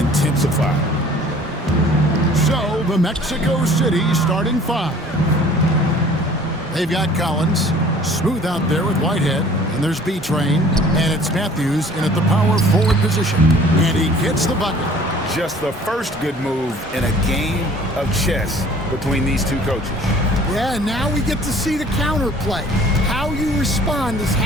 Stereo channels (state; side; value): normal; both; correlation 0.51